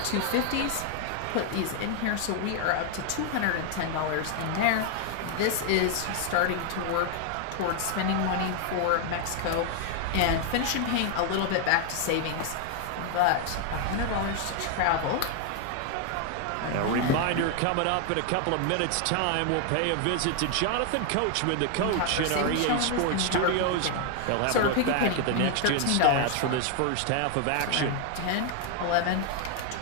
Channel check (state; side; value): different; both; correlation 0.00